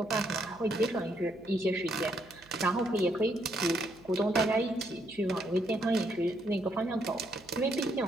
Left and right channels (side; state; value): right; noise; hum, 26 dB below the sound